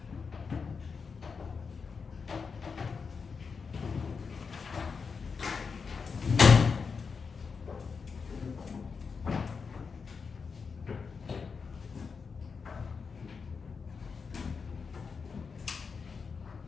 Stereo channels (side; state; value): right; quieter; 5.4 dB